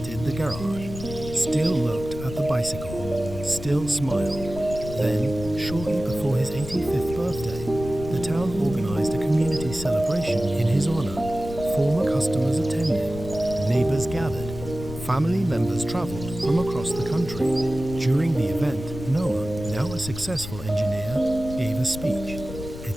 the garage, still looked at the bicycle, still smiled. Then, shortly before his 85th birthday, the town organized a community celebration in his honor. Former customers attended, neighbors gathered, family members traveled from across the country. During the event, Noah, now a successful engineer, gave a speech. At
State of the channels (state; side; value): noise; left; rumble, 10 dB below the sound